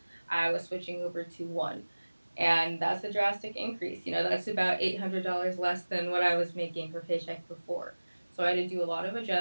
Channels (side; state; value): both; inverted; correlation -1.00